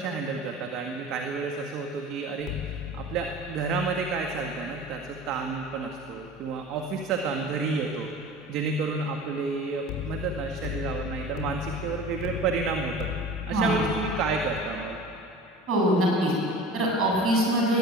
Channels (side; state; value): both; normal; correlation 0.39